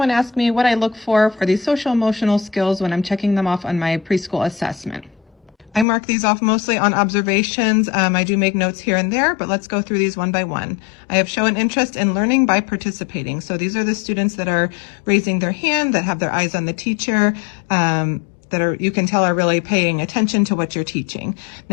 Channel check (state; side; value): drops out; right; at 5.9 s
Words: ask me what I look for these social emotional skills when I'm checking them off on my preschool assessment. I mark these off mostly on observations. I do make notes here and there, but let's go through these one by one. I have shown interest in learning by participating. So these are the students that are raising their hand, that have their eyes on the teacher, that are, you can tell, are really paying attention to what you're teaching.